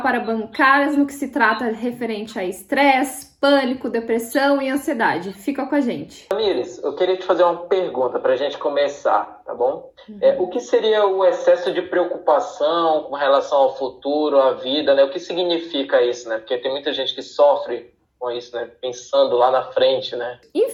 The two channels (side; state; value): both; identical; correlation 1.00